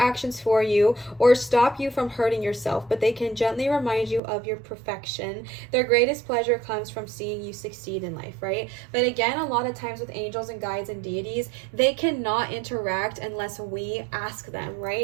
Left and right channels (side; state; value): left; drops out; at 4.2 s